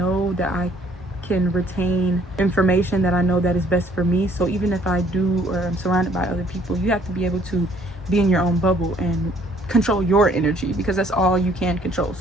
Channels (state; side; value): normal; both; correlation 0.61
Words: that I can retain information that I know that is best for me. So even if I do or I'm surrounded by other people, you have to be able to be in your own bubble and control your energy, because that's all you can control.